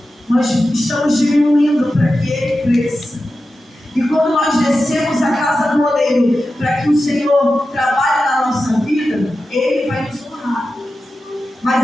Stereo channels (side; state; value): both; normal; correlation 0.92